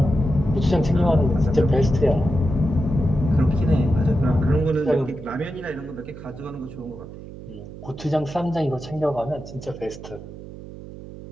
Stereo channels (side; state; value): right; noise; hum, 14 dB below the sound